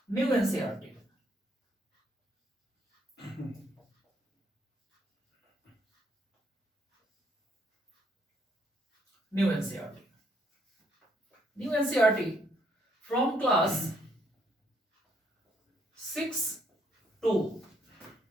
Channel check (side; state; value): both; normal; correlation 0.70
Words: New NCERT, new NCERT, new NCERT from class 6 to